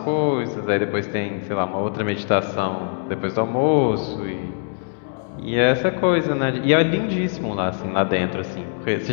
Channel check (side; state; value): right; silent; 64 dB below the other